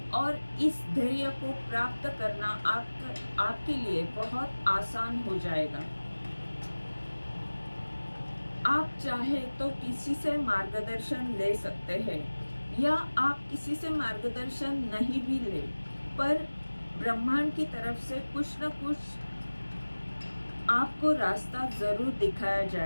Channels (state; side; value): inverted; both; correlation -1.00